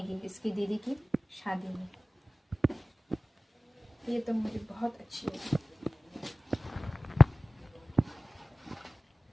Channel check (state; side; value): normal; both; correlation 0.97